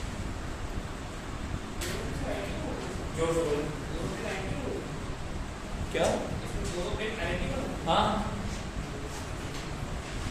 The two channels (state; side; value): identical; both; correlation 1.00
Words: जोर से बोलो। क्या? हाँ